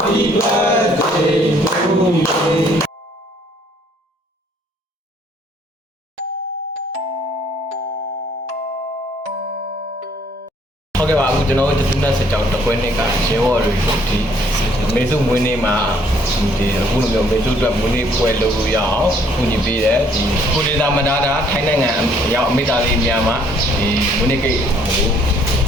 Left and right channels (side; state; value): both; normal; correlation 0.63